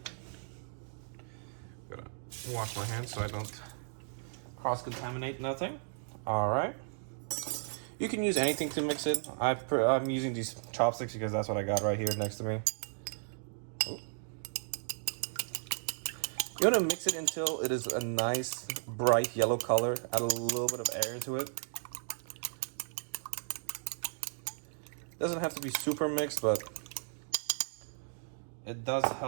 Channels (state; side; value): silent; left; digital silence